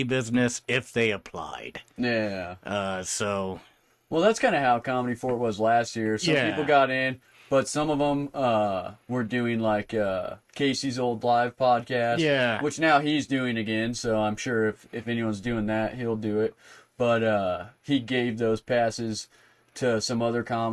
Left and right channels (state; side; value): identical; both; correlation 1.00